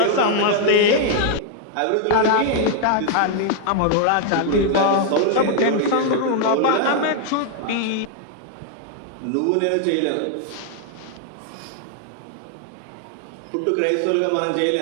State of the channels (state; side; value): different; both; correlation 0.00